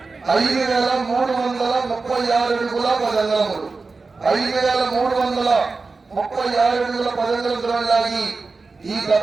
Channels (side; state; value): left; quieter; 4.0 dB